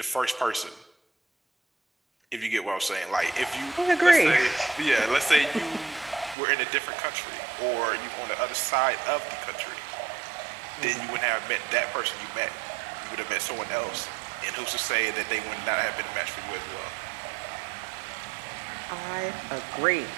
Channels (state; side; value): drops out; left; at 6.4 s